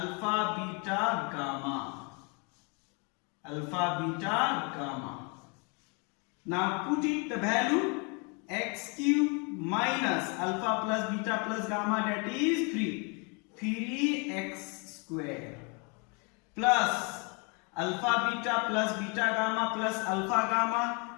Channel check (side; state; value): right; quieter; 33.5 dB